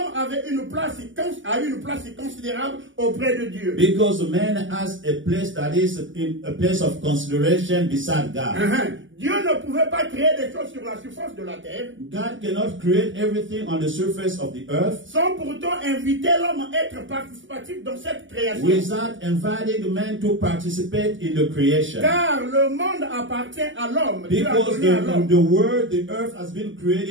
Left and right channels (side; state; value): left; late; 0.55 ms